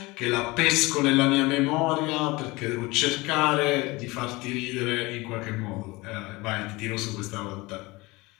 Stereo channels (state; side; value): quieter; right; 22.5 dB